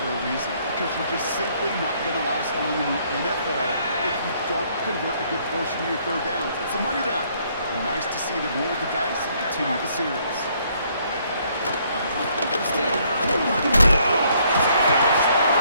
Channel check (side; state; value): both; inverted; correlation -0.67